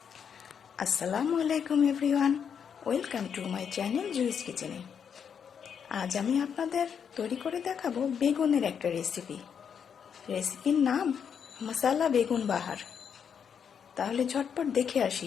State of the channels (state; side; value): quieter; right; 7.4 dB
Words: Assalamu alaikum everyone. Welcome to my channel Juice Kitchen. আজ আমি আপনাদের তৈরি করে দেখাবো বেগুনের একটা রেসিপি। রেসিপির নাম মশলা বেগুন বাহার। তাহলে ঝটপট দেখে